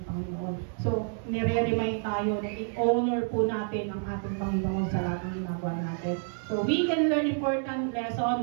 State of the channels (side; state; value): left; silent; 59 dB below the other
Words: Panginoon. So, nire-remind tayo na i-honor po natin ang ating Panginoon sa lahat ng ginagawa natin. So, we can learn important